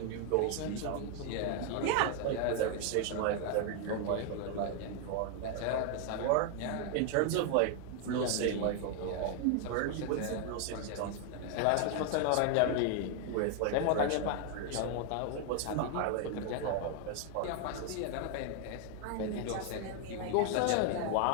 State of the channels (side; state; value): both; different; correlation 0.00